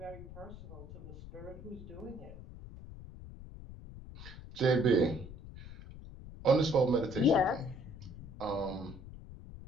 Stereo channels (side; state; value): left; noise; rumble, 14 dB below the sound